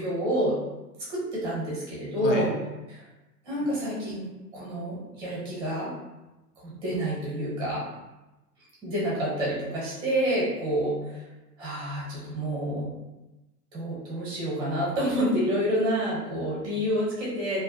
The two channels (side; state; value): both; normal; correlation 0.30